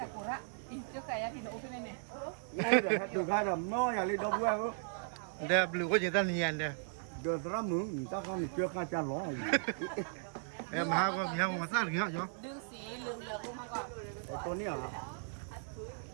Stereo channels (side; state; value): left; silent; digital silence